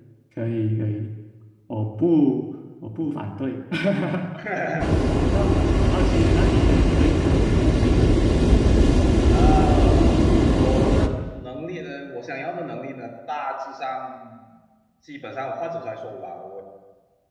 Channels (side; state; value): both; identical; correlation 1.00